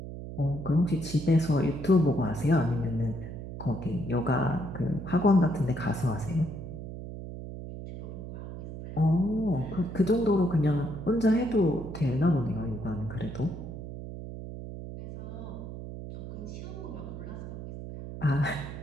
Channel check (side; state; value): right; noise; hum, 9 dB below the sound